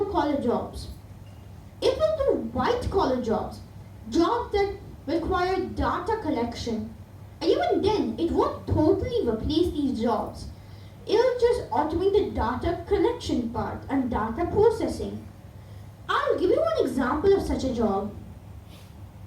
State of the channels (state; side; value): identical; both; correlation 1.00